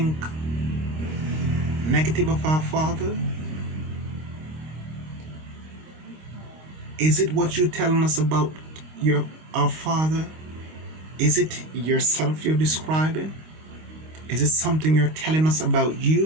negative of our father? Is it what you're telling us about our father? Is it yourself you're describing? Is it something you're telling us about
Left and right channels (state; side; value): late; left; 25 ms